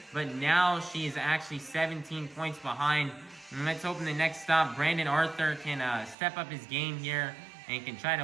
but now she is actually 17 points behind. And let's hope in the next stop Brandon Arthur can step up his game here and can try to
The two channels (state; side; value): drops out; left; at 6.2 s